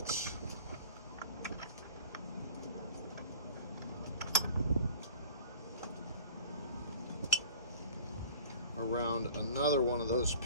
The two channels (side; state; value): both; inverted; correlation -0.44